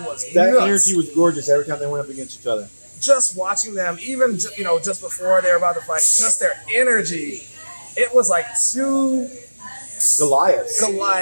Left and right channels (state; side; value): inverted; both; correlation -1.00